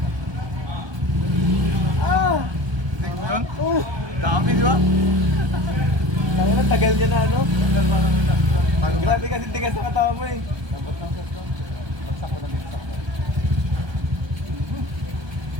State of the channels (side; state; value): left; late; 1.2 ms